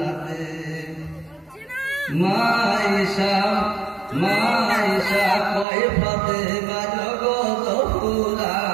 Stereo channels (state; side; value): drops out; left; at 5.7 s